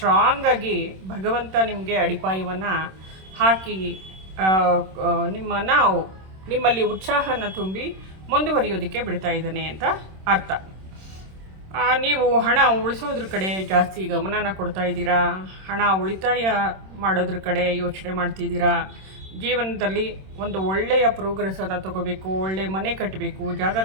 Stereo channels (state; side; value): late; left; 26 ms